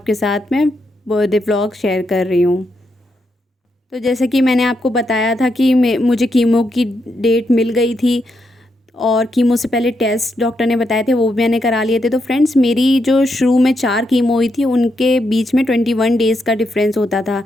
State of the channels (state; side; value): normal; both; correlation 0.81